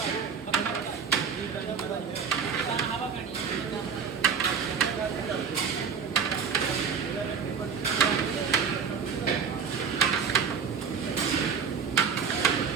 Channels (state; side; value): quieter; left; 6.5 dB